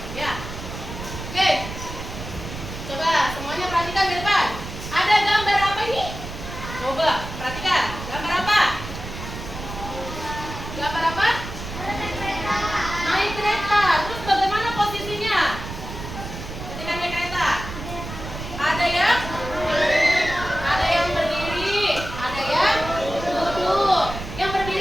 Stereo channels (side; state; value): right; noise; rumble, 9 dB below the sound